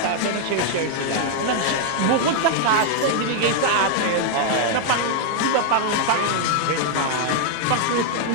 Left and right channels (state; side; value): different; both; correlation -0.01